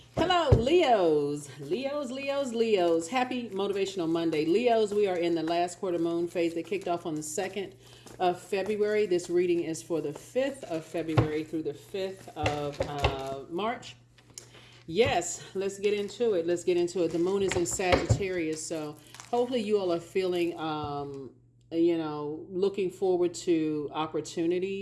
Hello, Leos. Leos. Happy Motivational Monday. Leos, we are in the last quarter moon phase that kicked off on the 2nd of February. This reading is for the 5th of February through the 5th of March. Yes, let's get into it. The moon is in Sagittarius, so hopefully you all are feeling looking forward to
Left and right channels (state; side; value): identical; both; correlation 1.00